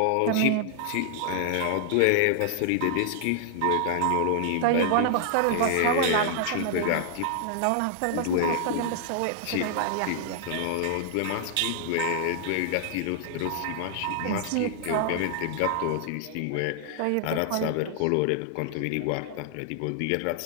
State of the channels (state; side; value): different; both; correlation -0.01